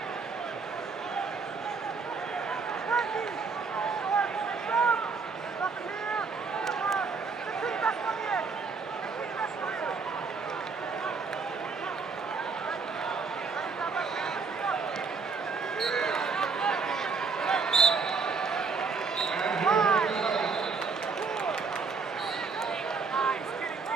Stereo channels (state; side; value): quieter; left; 4.8 dB